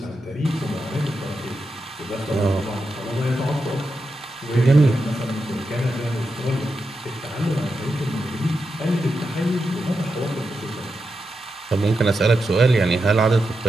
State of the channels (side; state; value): both; normal; correlation 0.87